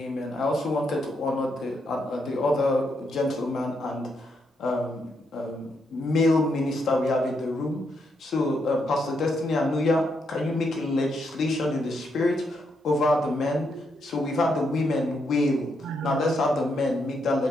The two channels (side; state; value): both; normal; correlation 0.79